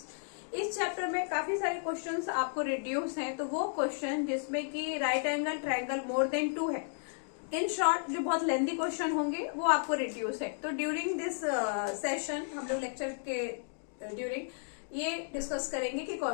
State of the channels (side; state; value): right; silent; digital silence